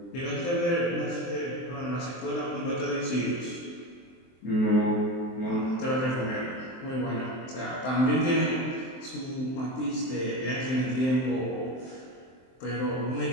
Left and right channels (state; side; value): late; right; 23 ms